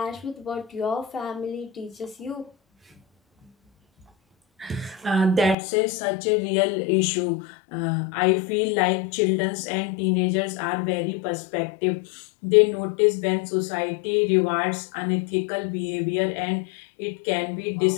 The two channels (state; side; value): drops out; right; at 5.6 s